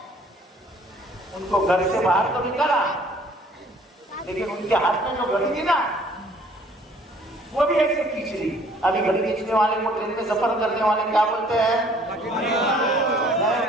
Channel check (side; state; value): both; normal; correlation 0.57